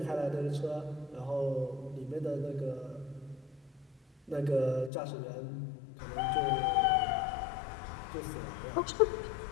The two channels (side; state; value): right; drops out; at 4.9 s